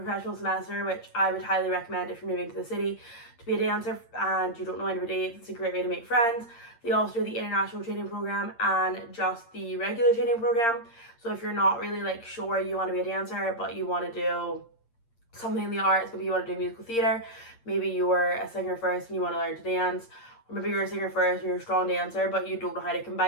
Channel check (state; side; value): late; right; 8.7 ms